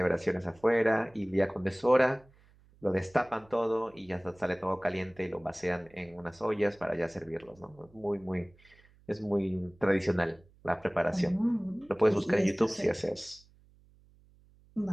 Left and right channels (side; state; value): right; noise; hum, 29 dB below the sound